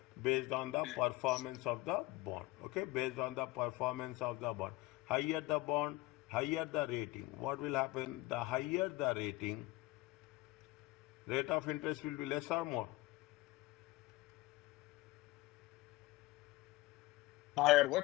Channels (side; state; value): right; quieter; 19.6 dB